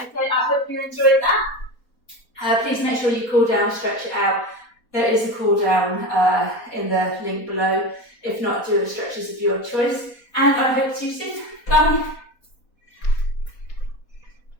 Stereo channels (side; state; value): right; late; 4.2 ms